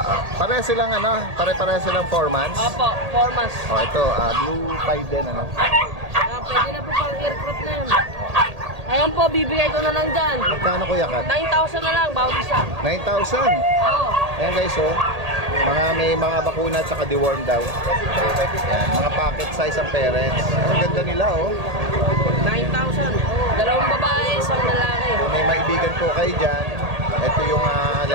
Pare silang pare-pare silang 4 months. Opo, 4 months. Ito, blue pied din, Pwede na po pang aircraft na yan. Ayan po, bibigay ko na lang dyan. Magkano Kuya Kat? 9,000 na lang, bawat isa. 9,000. Oo. Ayan guys, oh. May mga bakuna at saka deworm daw. Ayan, mga pocket size ang parents. Ang ganda nila, oh. 9,000. Dalawang babae, isang lalaki. Kung may maibigan po kayo dyan, ito yung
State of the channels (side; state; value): left; late; 1.8 ms